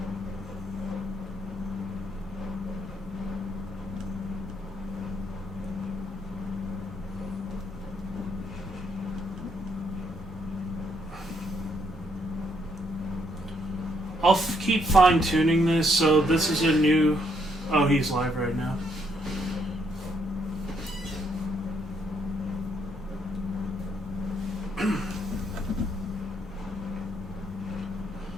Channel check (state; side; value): normal; both; correlation 0.72